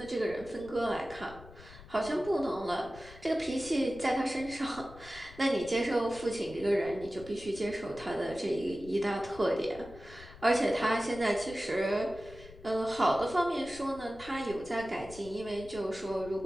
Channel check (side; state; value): left; noise; rumble, 18 dB below the sound